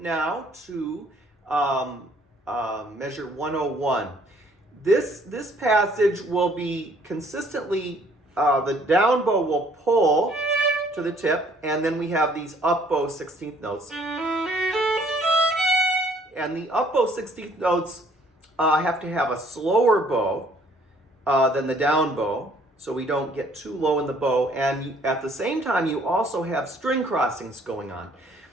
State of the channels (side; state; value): both; normal; correlation 0.61